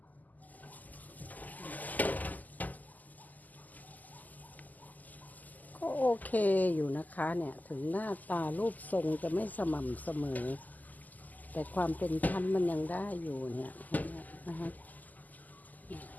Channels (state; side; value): late; right; 0.081 ms